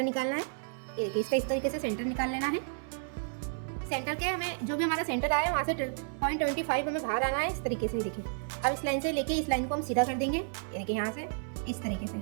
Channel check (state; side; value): silent; left; 57 dB below the other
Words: निकालना है। ये देखिए इसका इस तरीके से सेंटर निकाल लेना है। सेंटर के हमें जो भी हमारा सेंटर आया है वहाँ से 0.25 हमें बाहर आना है इस तरीके से। देखिए अब इस लाइन से लेके इस लाइन को हम सीधा कर देंगे। ये देखिए यहाँ से इस तरीके से,